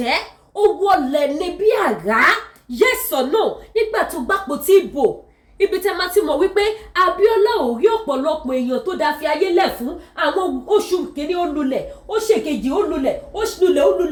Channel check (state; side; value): identical; both; correlation 1.00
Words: ó wọlẹ̀ ní bí àrá yes or no nígbà tó gbàpò tí ìbò ibi tẹ́ máa ti mọ̀ wípé Abiola ò rí ọ̀pọ̀lọpọ̀ èèyàn tó dá fi ayé lẹ̀ fún àwọn oṣù kìíní ó lulẹ̀ ó ṣèkejì ó lulẹ̀